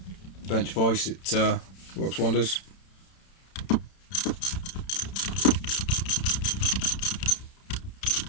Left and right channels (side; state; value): right; late; 31 ms